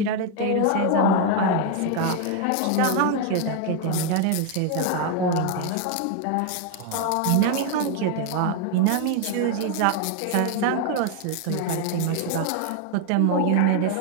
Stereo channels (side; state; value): both; different; correlation 0.01